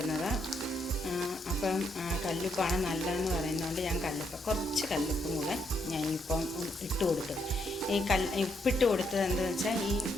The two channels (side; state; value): both; normal; correlation 0.76